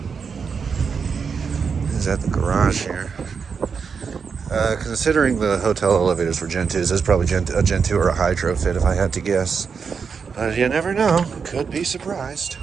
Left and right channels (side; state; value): left; quieter; 5.9 dB